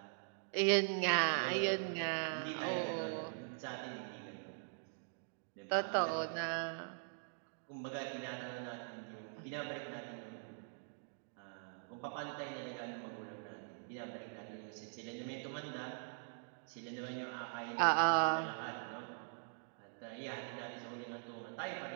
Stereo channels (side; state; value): left; silent; digital silence